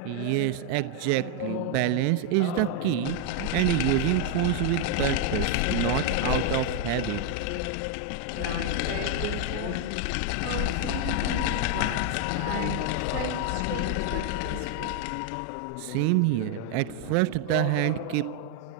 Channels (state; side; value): different; both; correlation 0.01